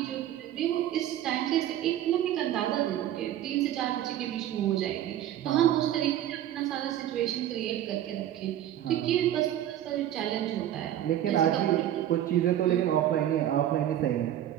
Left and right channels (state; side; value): quieter; left; 11.9 dB